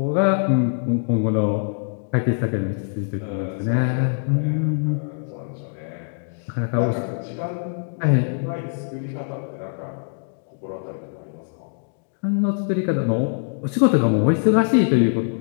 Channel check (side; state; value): right; silent; digital silence